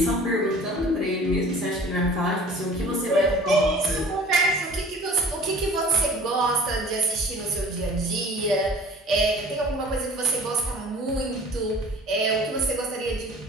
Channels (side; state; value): both; normal; correlation 0.46